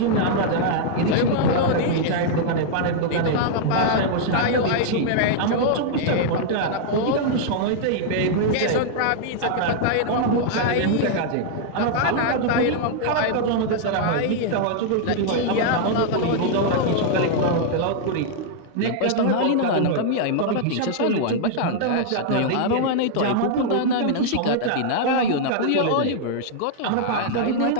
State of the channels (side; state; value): both; different; correlation -0.01